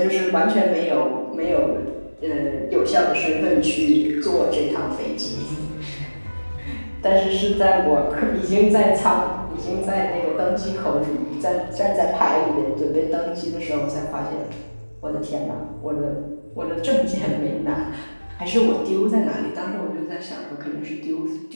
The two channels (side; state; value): both; inverted; correlation -1.00